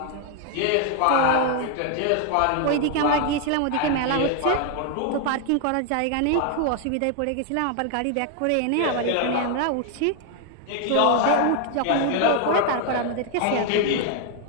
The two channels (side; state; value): both; different; correlation 0.00